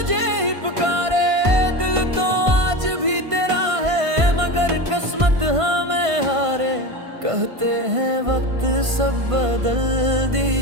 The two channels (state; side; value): late; left; 1.5 ms